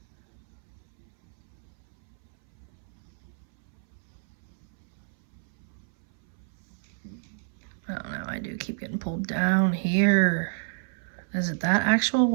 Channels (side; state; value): left; silent; 58 dB below the other